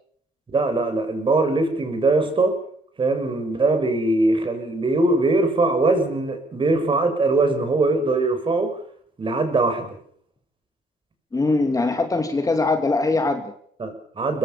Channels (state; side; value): normal; both; correlation 0.66